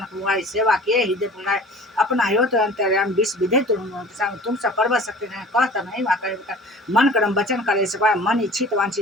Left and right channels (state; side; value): normal; both; correlation 0.44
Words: हुआ सेवा किए हृदय पुनाए अपना हो तो अंतर्याम विष विधे तुम सब पर्व सकते हैं कहता नहीं वहाँ मन कर्म वचन करे सपाए मन इच्छित